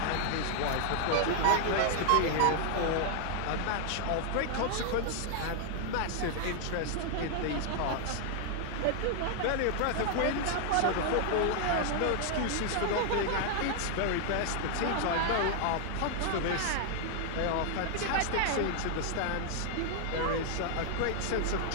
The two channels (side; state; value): both; different; correlation 0.00